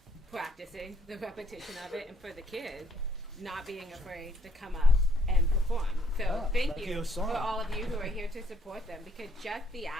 practicing the repetition of it, and for the kids, not being afraid to come up and perform. So Yeah, thank like you you saw. for all of you who are here to support them, because just the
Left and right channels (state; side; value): normal; both; correlation 0.68